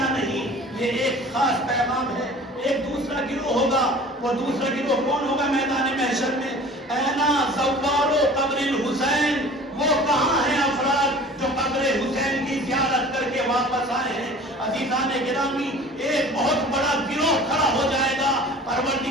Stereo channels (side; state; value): both; normal; correlation 0.44